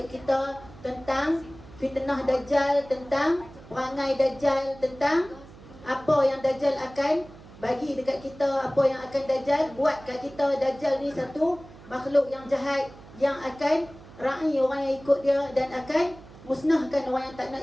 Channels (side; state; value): right; noise; hum, 20 dB below the sound